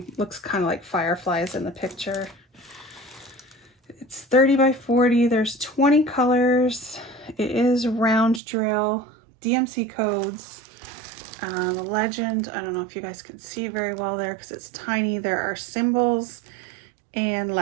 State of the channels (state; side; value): drops out; left; at 8.4 s